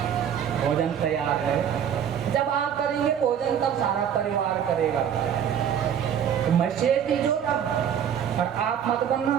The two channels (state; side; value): quieter; left; 8.8 dB